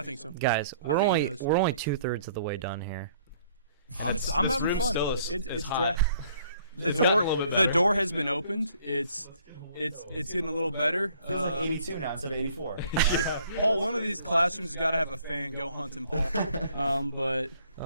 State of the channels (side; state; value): both; inverted; correlation -0.61